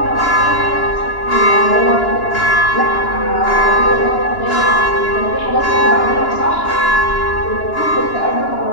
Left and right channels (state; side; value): late; right; 2.9 ms